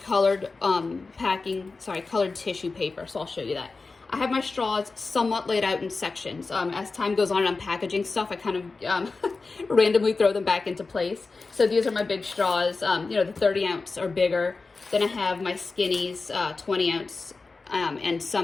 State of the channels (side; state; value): right; quieter; 4.0 dB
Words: colored colored tissue paper. So I'll show you that. I have my straws somewhat laid out in sections. As time goes on and I'm packaging stuff, I kind of randomly throw them back into place. So these are my big straws, the 30 ounce or bigger. Then I have my skinnies, 20 ounce, and